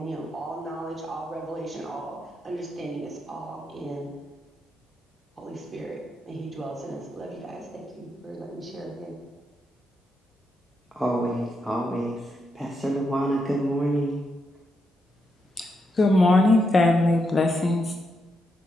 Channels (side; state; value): both; normal; correlation 0.82